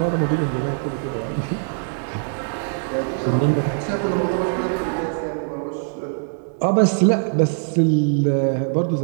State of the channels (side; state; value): left; silent; digital silence